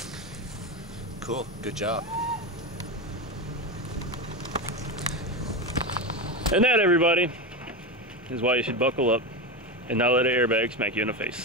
Cool, good job. And that, everybody, is why you should buckle up and not let an airbag smack you in the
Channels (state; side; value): normal; both; correlation 0.17